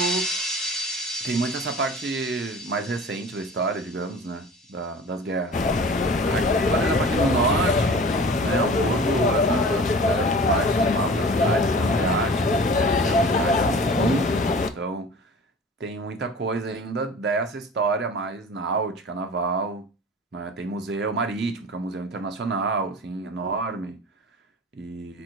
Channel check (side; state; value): both; normal; correlation 0.41